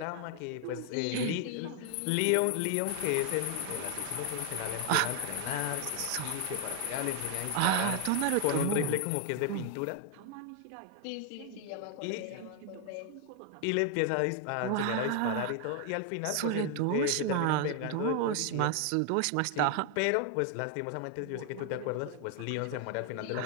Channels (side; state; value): both; different; correlation 0.00